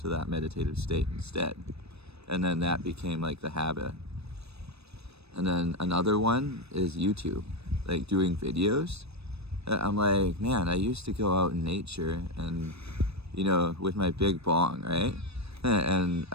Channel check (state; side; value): late; left; 0.78 ms